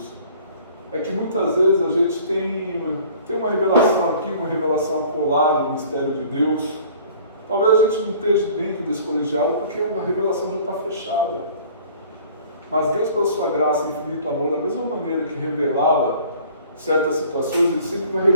é que muitas vezes a gente tem uma revelação aqui, uma revelação acolada no mistério de Deus. Talvez a gente não esteja dentro desse colegiado porque a revelação já está fechada. Mas Deus, pela sua graça e infinito amor, da mesma maneira que revelava certas situações, Ele sempre vai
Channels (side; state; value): both; inverted; correlation -0.50